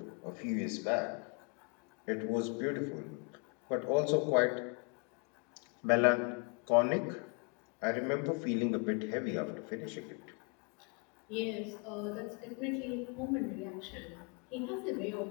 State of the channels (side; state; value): right; quieter; 37.3 dB